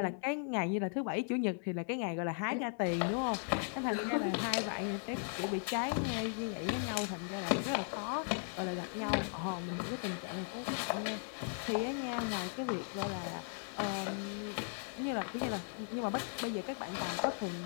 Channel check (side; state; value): right; silent; 53 dB below the other